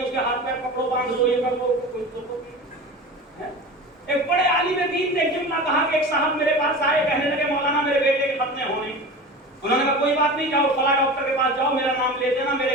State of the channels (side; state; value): both; normal; correlation 0.32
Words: اس کے ہاتھ پیر پکڑو, باندھ دو, یہ کر دو, کوئی ضرورت نہیں. ایک بڑے عالم دین نے جملہ کہا کہ ایک صاحب میرے پاس آئے, کہنے لگے مولانا میرے بیٹے کے ختنے ہونے. انہوں نے کہا کوئی بات نہیں, جاؤ فلاں ڈاکٹر کے پاس جاؤ, میرا نام لے دینا,